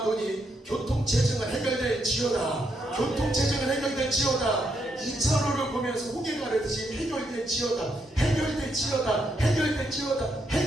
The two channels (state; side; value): normal; both; correlation 0.78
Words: 교통체증은 해결될지어다. 교통체증은 해결될지어다. 2차로를 보면서 홍해 가르듯이 해결될지어다. 해결될지어다. 해결될지어다.